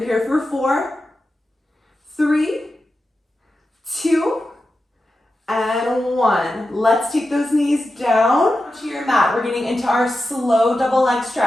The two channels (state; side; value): normal; both; correlation 0.91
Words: here for 4, 3, 2, and 1. Let's take those knees down to your mat. We're getting into our slow double leg